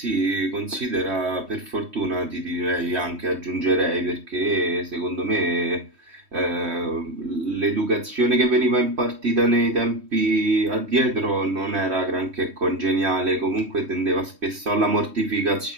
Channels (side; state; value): left; late; 3.1 ms